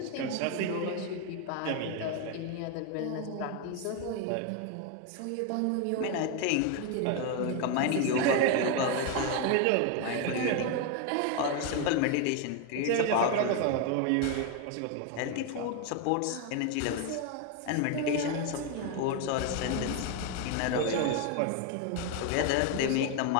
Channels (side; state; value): both; different; correlation 0.01